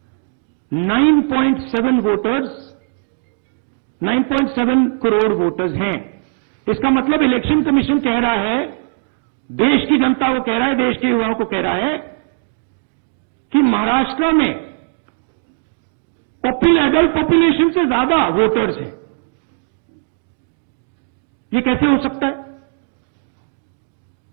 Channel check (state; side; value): silent; left; digital silence